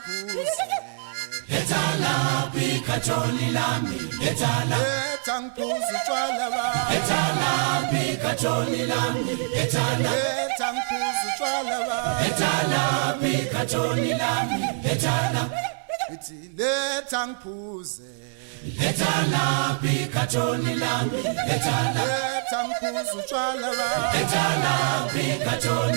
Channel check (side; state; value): left; silent; digital silence